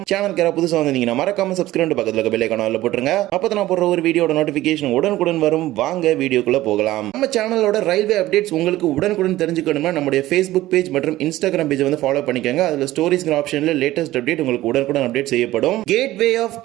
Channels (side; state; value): left; quieter; 16.0 dB